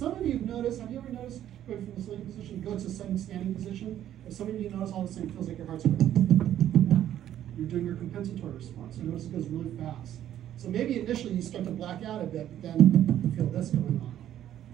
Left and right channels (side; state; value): left; quieter; 11.4 dB